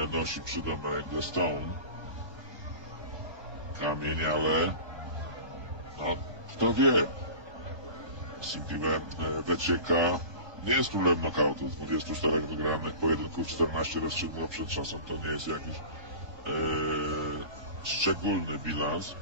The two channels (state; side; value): late; left; 1.2 ms